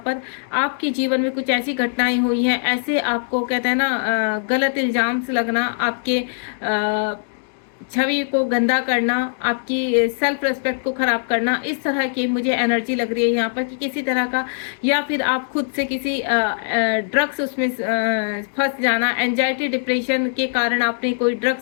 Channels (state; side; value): silent; right; digital silence